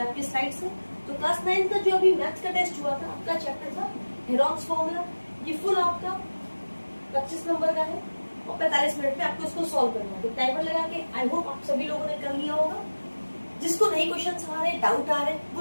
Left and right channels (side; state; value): both; inverted; correlation -1.00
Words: आपकी स्लाइड्स है। तो क्लास 9 का जो अभी मैथ्स का टेस्ट हुआ था, आपका चैप्टर था हेरोन्स फॉर्मूला। ये फुल आपका 25 नंबर का है और 45 मिनट में आपको इसको सॉल्व करना है। तो टाइमर लगा के आई होप आप सभी लोगों ने कर लिया होगा। जिसको नए क्वेश्चन आ रहे हैं, डाउट आ रहे हैं,